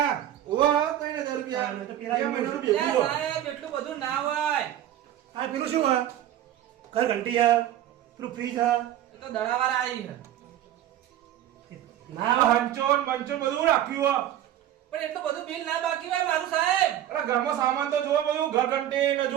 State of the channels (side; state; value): left; quieter; 12.0 dB